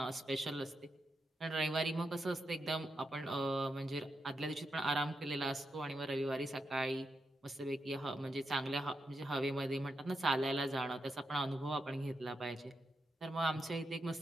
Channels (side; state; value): both; normal; correlation 0.85